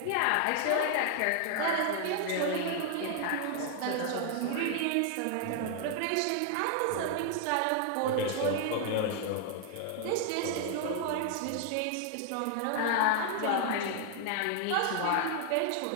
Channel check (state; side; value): different; both; correlation 0.00